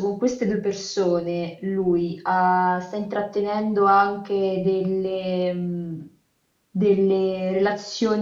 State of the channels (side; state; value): both; identical; correlation 1.00